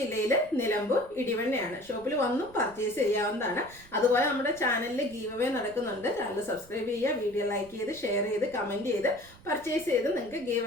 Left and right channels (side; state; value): right; noise; rumble, 23 dB below the sound